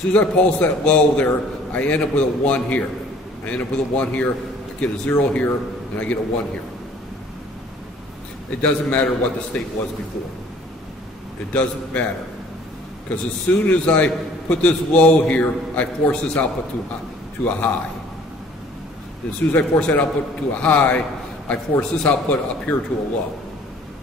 as I pulse that low there, I end up with a 1 here. I end up with a 1 here. get a 0 here, and I get a 1 here. It doesn't matter what the state was before. It doesn't matter. Because as soon as I put this low here, I force this output to a high. As soon as I force that output to a high, I force this output up here to a low.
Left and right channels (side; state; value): both; normal; correlation 0.54